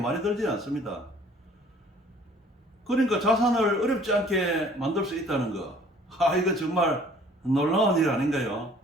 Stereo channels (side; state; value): both; normal; correlation 0.54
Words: 들지 않습니다. 그러니까 자산을 어렵지 않게 만들 수 있다는 거. 이거 정말 놀라운 일 아닌가요?